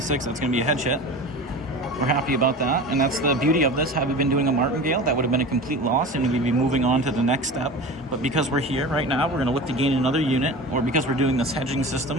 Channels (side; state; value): both; normal; correlation 0.33